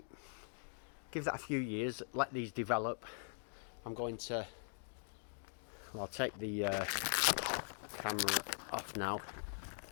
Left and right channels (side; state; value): right; silent; digital silence